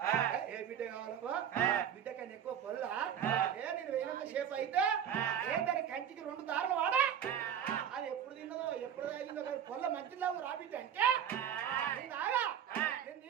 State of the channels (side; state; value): left; quieter; 9.0 dB